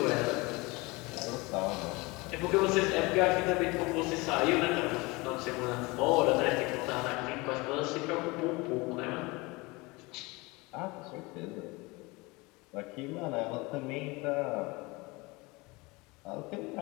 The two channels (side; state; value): right; quieter; 24.4 dB